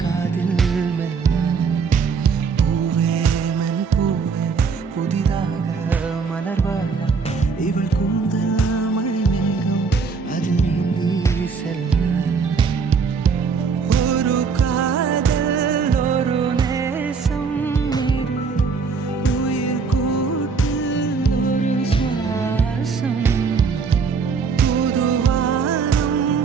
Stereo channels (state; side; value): quieter; left; 5.3 dB